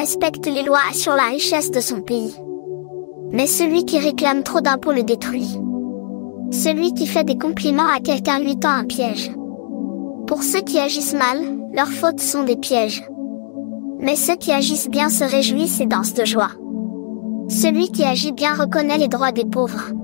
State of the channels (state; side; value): silent; right; digital silence